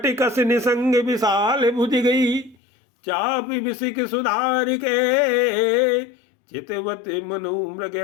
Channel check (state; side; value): drops out; right; at 2.6 s